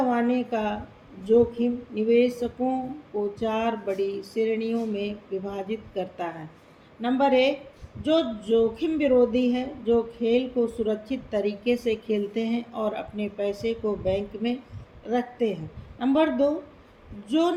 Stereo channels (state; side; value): identical; both; correlation 1.00